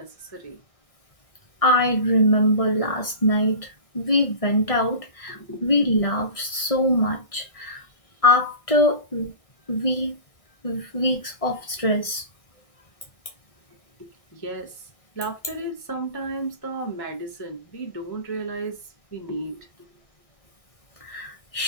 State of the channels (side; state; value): right; late; 1.6 ms